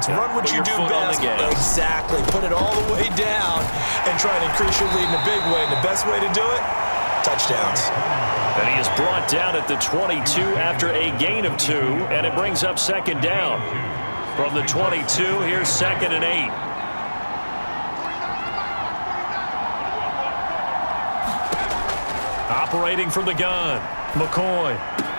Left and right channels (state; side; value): inverted; both; correlation -1.00